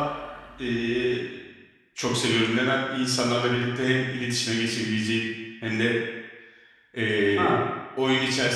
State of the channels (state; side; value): identical; both; correlation 1.00